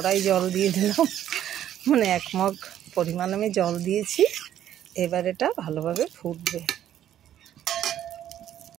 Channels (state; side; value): quieter; left; 11.2 dB